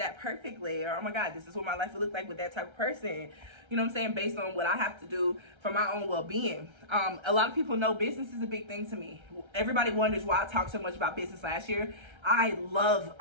perfectly. Or, oh my God, this is what my life would look like with that type of person. You know what I'm saying? Based on what I have to do for my own well-being. A lot of people know business is a big thing to me. Everybody wonders why I talked so much about business last year. I love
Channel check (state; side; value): late; left; 1.3 ms